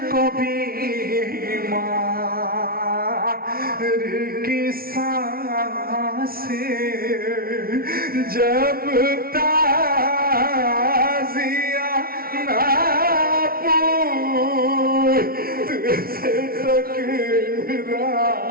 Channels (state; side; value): late; left; 0.43 ms